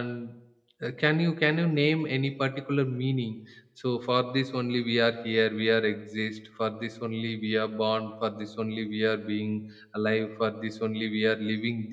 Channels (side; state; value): both; identical; correlation 1.00